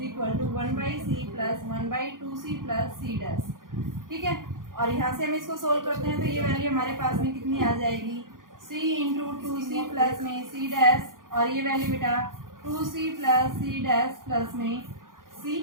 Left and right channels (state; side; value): late; left; 0.90 ms